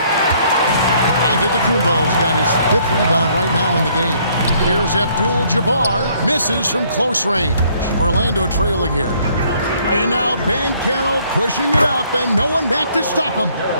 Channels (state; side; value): inverted; both; correlation -0.64